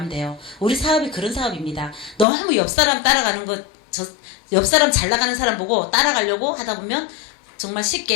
돼요. 우리 사업이 그런 사업입니다. 너무 옆 사람 따라가는 옆 사람 잘 나가는 사람 보고 따라가려고 하다 보면 정말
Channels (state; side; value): drops out; right; at 2.2 s